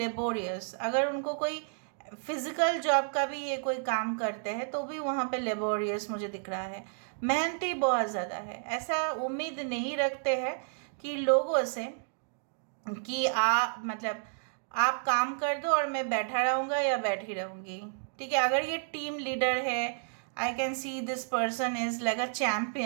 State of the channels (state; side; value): silent; left; digital silence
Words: अगर उनको कोई फिज़िकल जॉब का भी ये कोई काम करते हैं तो भी वहाँ पे लेबोरियस मुझे दिख रहा है। मेहनती बहुत ज़्यादा है। ऐसा उम्मीद नहीं रखते हैं कि लोगों से कि मतलब आप काम कर दो और मैं बैठा रहूँगा या बैठी रहूँगी, ठीक है। अगर ये टीम लीडर है, I can see this person is like a